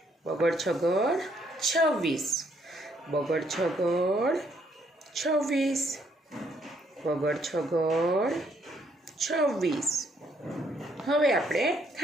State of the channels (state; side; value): normal; both; correlation 0.70